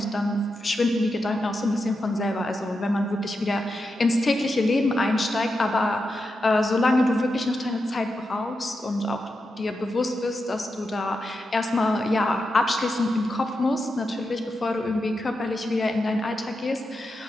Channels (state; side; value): normal; both; correlation 0.88